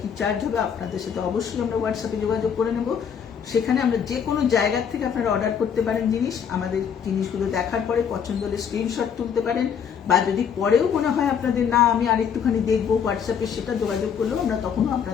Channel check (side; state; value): right; quieter; 7.5 dB